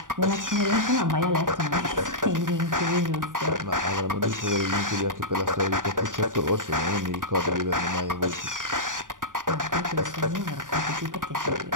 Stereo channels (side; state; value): left; late; 0.88 ms